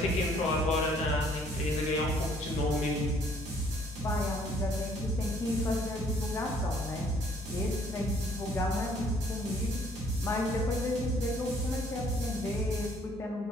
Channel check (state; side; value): normal; both; correlation 0.62